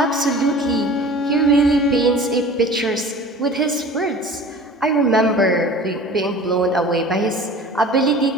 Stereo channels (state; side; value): normal; both; correlation 0.41